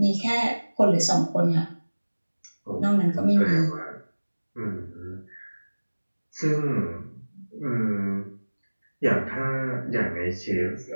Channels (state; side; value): inverted; both; correlation -1.00